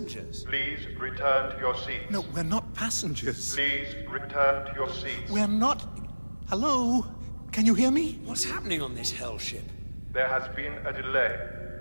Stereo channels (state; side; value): inverted; both; correlation -1.00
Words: Please return to your seats. No, we're not passengers. Please return to your seats. We're not... Hello? Can you hear me? What's happening on this hell ship? There has been a delay.